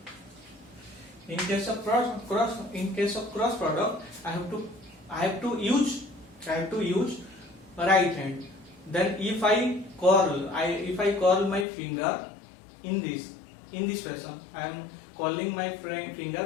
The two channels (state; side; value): drops out; right; at 11.7 s